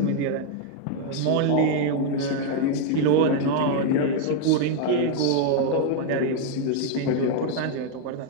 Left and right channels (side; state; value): both; different; correlation 0.00